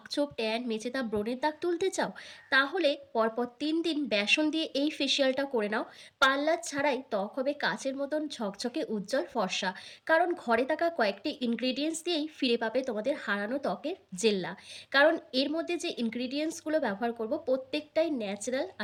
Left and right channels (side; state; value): both; identical; correlation 1.00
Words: ছোপ, ট্যান, মেচেদা, ব্রণের দাগ তুলতে চাও? তাহলে পরপর 3 দিন বেসন দিয়ে এই ফেসিয়ালটা করে নাও। পার্লার ছাড়াই ত্বক হবে কাচের মতন ঝকঝকে, উজ্জ্বল, ফর্সা। কারণ ঘরে থাকা কয়েকটি ইনগ্রিডিয়েন্টস দিয়েই ফিরে পাবে তোমাদের হারানো ত্বকের জেল্লা। কারণ এর মধ্যে যে ইনগ্রিডিয়েন্টসগুলো ব্যবহার করব প্রত্যেকটাই ন্যাচারাল,